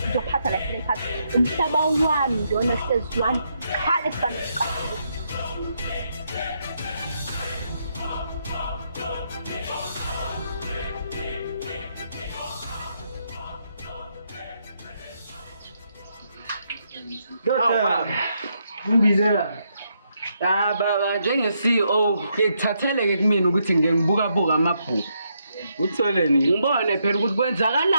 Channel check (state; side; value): inverted; both; correlation -0.78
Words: uzophatha la phakathi umhlaba wami ndona sezwani khale sibaleka Doctor, ngibizela. Baba njenge-CEO ngikuthatheleke kumina ukuthi ngibuka amabhuku. Utholeni? Ngibone phela ukuthi